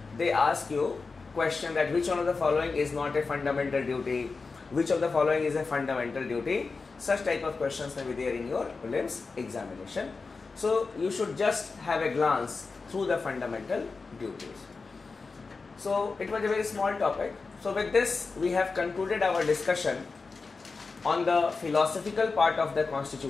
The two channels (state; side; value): quieter; right; 4.3 dB